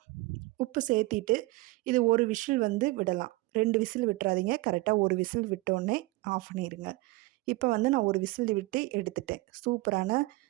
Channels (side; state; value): left; quieter; 21.3 dB